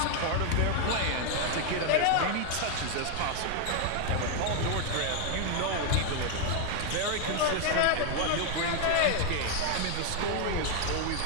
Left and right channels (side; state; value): both; different; correlation 0.00